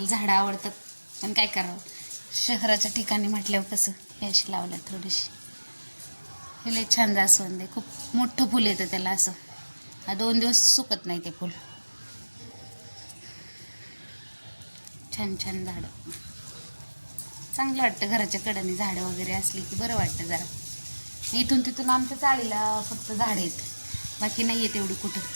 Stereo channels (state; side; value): inverted; both; correlation -1.00